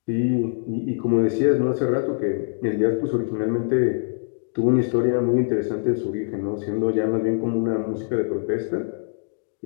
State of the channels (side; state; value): right; silent; digital silence